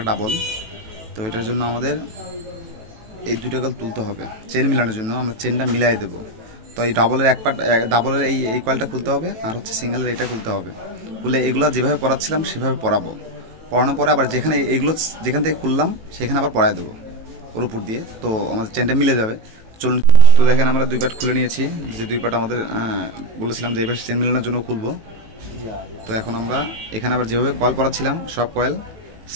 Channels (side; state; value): left; late; 18 ms